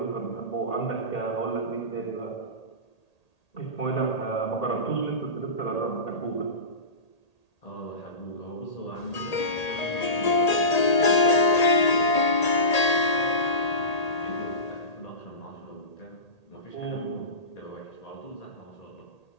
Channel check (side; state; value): right; late; 1.8 ms